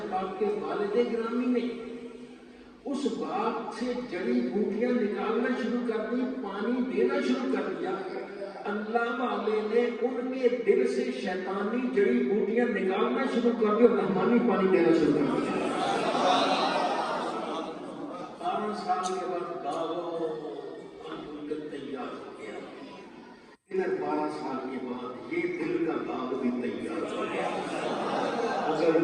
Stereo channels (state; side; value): identical; both; correlation 1.00